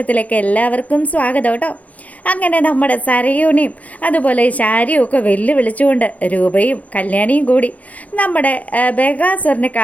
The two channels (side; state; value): right; late; 0.071 ms